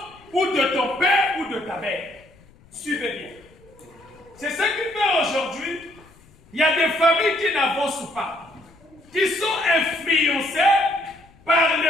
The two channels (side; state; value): left; noise; rumble, 27 dB below the sound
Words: ou de ton père, ou de ta mère. Suivez bien. C'est ce qui fait aujourd'hui, il y a des familles qui n'avancent pas, qui sont influencées par